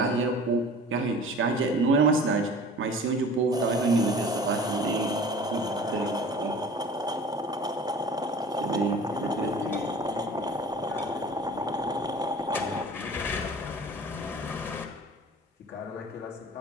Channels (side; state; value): both; normal; correlation 0.43